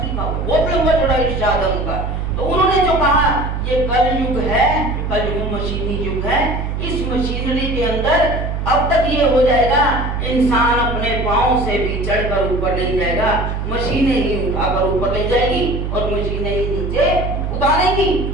लिखा हुआ, बहुत लंबा चौड़ा इरशाद है उनका। तो उन्होंने जो कहा ये कल युग है, कल युग मशीनी युग है। इस मशीनरी के अंदर अब तक ये हो जाएगा, इंसान अपने पाँव से भी चढ़कर ऊपर नहीं जाएगा, मशीनें ही उठाकर ऊपर ले जाएगी और मशीनें ही नीचे उतारेंगी।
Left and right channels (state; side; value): noise; right; hum, 3 dB below the sound